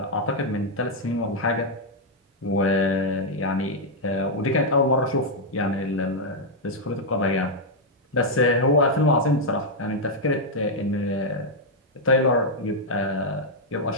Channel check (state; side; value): normal; both; correlation -0.02